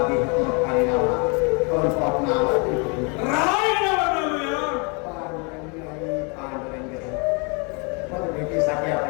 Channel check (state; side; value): quieter; right; 33.3 dB